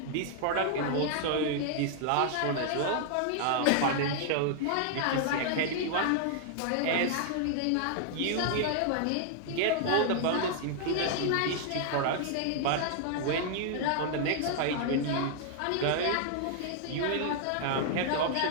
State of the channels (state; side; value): different; both; correlation -0.01